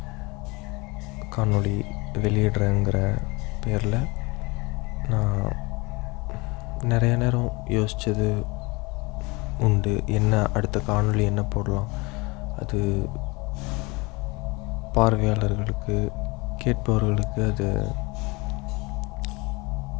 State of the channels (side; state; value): right; quieter; 25.7 dB